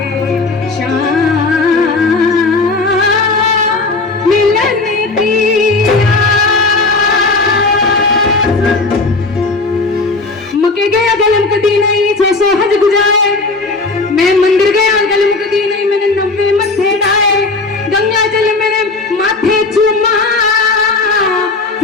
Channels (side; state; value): right; quieter; 3.6 dB